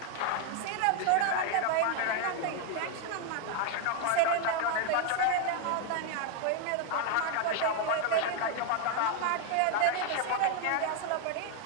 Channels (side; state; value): both; different; correlation 0.00